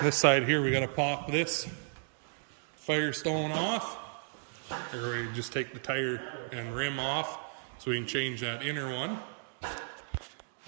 side here, we got to pop this Firestone off. Or we just take the tire and rim off so we can change that inner one.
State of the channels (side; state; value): left; silent; digital silence